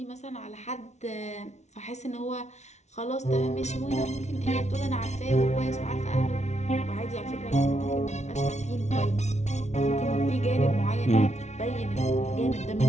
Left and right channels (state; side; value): late; right; 0.32 ms